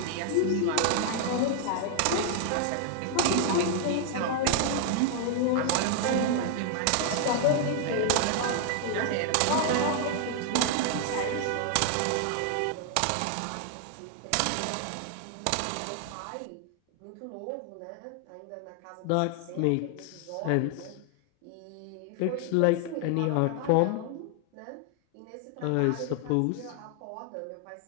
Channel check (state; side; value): different; both; correlation 0.00